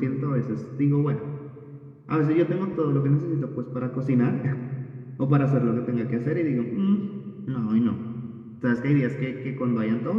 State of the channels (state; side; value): identical; both; correlation 1.00